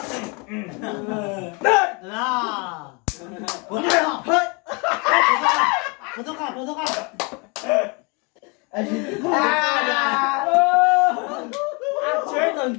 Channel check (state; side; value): quieter; right; 31.1 dB